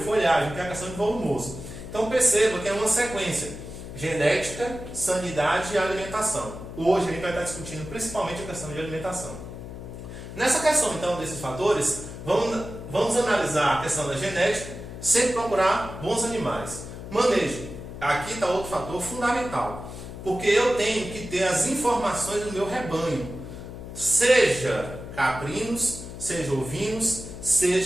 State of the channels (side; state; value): left; noise; hum, 11 dB below the sound